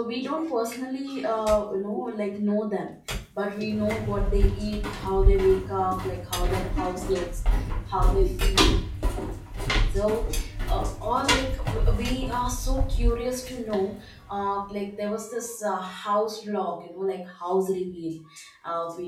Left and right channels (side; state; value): both; identical; correlation 1.00